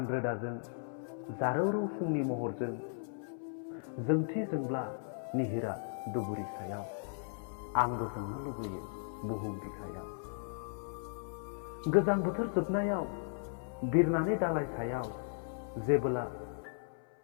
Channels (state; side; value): silent; right; 54 dB below the other